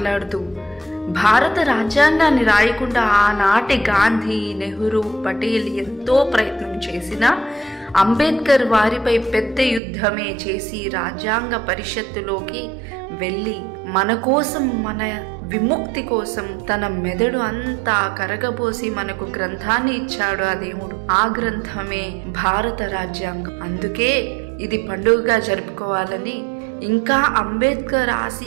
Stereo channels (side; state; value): left; drops out; at 9.8 s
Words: భారత రాజ్యాంగాన్ని రాయకుండా ఆనాటి గాంధీ, నెహ్రూ, పటేల్ ఎంతో ప్రయత్నం చేసినా అంబేద్కర్ వారిపై పెద్ద యుద్ధమే చేసి రాజ్యాంగ పరిషత్తులోకి వెళ్ళి మన కోసం, మన విముక్తి కోసం తన మెదడు అంతా కరగబోసి మనకు గ్రంథాన్ని ఇచ్చాడు ఆ దేవుడు. ఆ గ్రంథమే భారత రాజ్యాంగం. అందుకే ఇది పండుగగా జరుపుకోవాలని, ఇంకా అంబేద్కర్